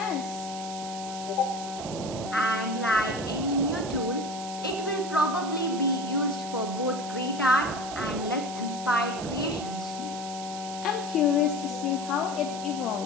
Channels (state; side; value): noise; right; hiss, 11 dB below the sound